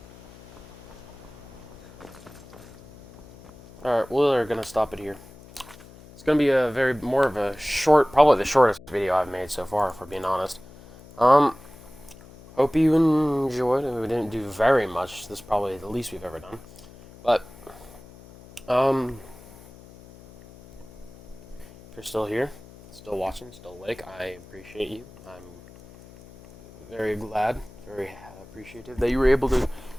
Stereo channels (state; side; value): noise; left; hum, 20 dB below the sound